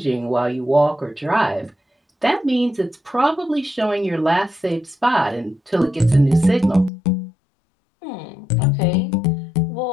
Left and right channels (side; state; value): right; drops out; at 6.9 s